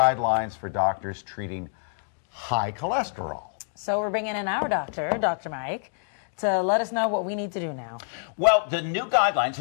for doctors treating high cholesterol. So we're bringing in our doctor, Dr. Mike, to let us know what we need to do now. Well, the new guidelines,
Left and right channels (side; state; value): right; silent; digital silence